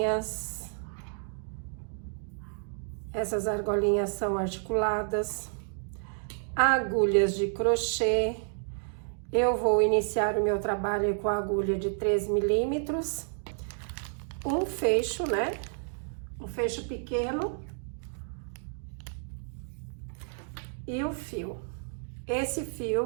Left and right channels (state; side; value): silent; left; digital silence